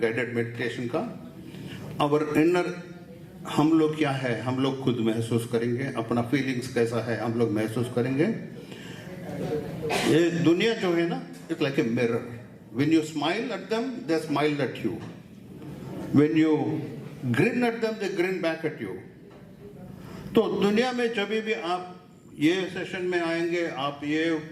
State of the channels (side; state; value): both; identical; correlation 1.00